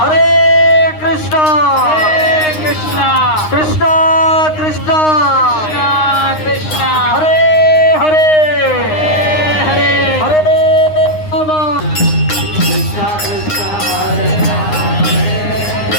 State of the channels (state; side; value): late; right; 9.7 ms